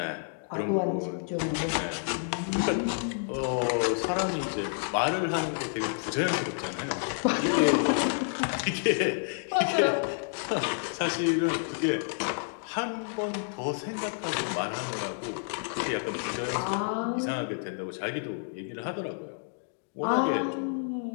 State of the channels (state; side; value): silent; right; digital silence